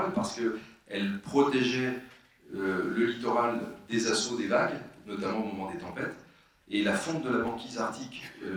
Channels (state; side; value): identical; both; correlation 1.00